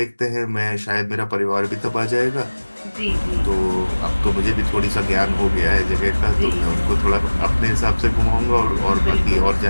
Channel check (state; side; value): inverted; both; correlation -1.00